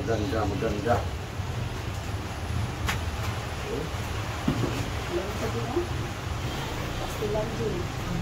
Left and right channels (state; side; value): identical; both; correlation 1.00